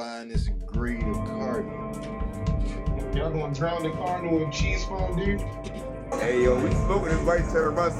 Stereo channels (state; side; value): identical; both; correlation 1.00